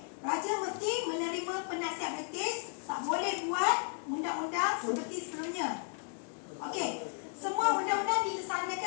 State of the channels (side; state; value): right; silent; 55 dB below the other